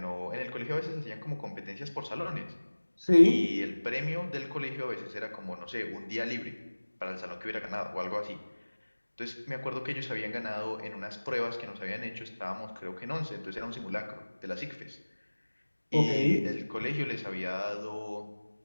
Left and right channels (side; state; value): both; inverted; correlation -1.00